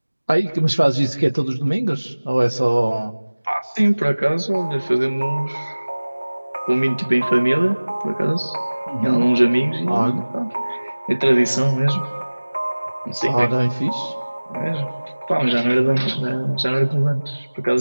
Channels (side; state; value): both; inverted; correlation -1.00